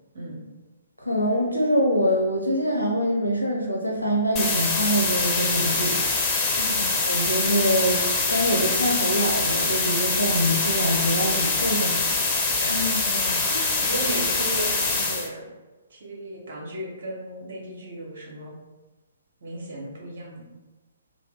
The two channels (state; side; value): inverted; both; correlation -0.45